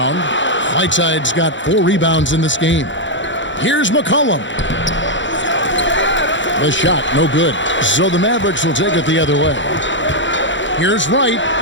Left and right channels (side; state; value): right; late; 0.54 ms